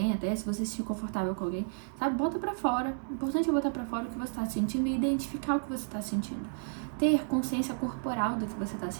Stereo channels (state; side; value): silent; left; digital silence